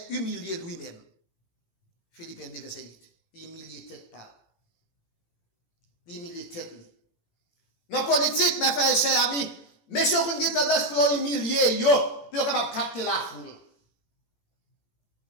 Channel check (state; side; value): late; right; 18 ms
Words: humilié lui-même. Philippiens 2, verset 8. Humilié tête par. Humilié tête. Dans la politique, mes frères et chers amis, messieurs, vous avez tendance pour humilier, pour capable capter la foule.